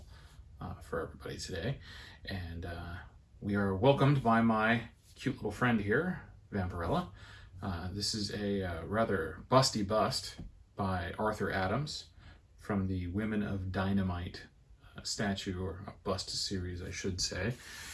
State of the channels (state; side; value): identical; both; correlation 1.00